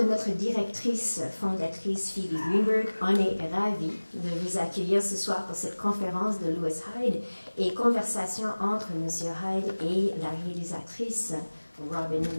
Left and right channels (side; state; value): both; inverted; correlation -1.00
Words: notre directrice fondatrice Phoebe Greenberg, on est ravis de vous accueillir ce soir pour cette conférence de Lewis Hyde et conversation entre M. Hyde et la réalisatrice Robin